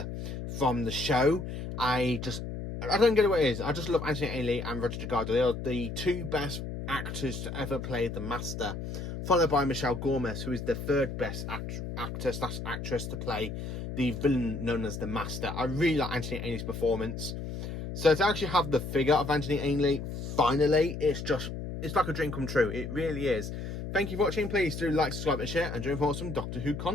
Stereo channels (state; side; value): noise; left; hum, 6 dB below the sound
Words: from the show. I don't get what it is. I just love Anthony Ainley and Roger Delgado. They are the 2 best actors to ever play the Master, followed by Michelle Gomez, who is the 3rd best actor/actress to play the villain known as the Master. I really like Anthony Ainley's performance. So to actually have the figure of Anthony Ainley, finally, it's like a dream come true. It really is. Thank you for watching. Please do like, subscribe and share, and join for some Doctor Who